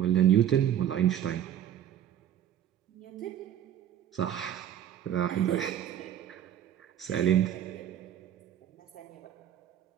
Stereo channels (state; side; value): quieter; left; 10.5 dB